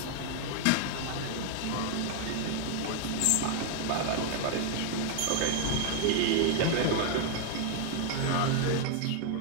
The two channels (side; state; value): both; different; correlation 0.00